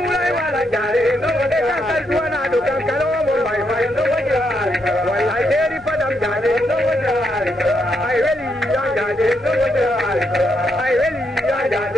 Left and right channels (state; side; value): normal; both; correlation 0.79